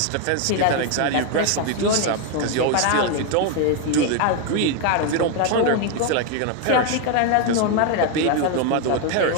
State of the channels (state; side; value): different; both; correlation 0.01